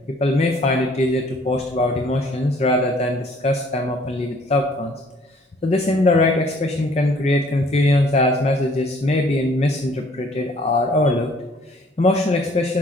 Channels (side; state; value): both; normal; correlation 0.58